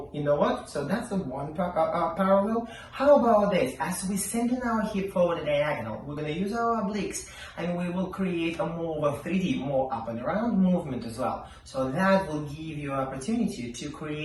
you know what? So that's the one parallel. How about this? As we send in our hip forward diagonal, we're going to use our obliques, and we will create a more of a 3D, more up and around movement as well. So that will give you an opportunity to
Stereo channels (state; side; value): identical; both; correlation 1.00